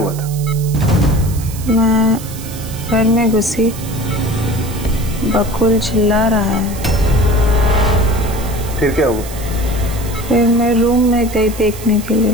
था? मैं घर में घुसी, बकुल चिल्ला रहा है। फिर क्या हुआ? फिर मैं रूम में गई देखने के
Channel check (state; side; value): noise; right; hiss, 14 dB below the sound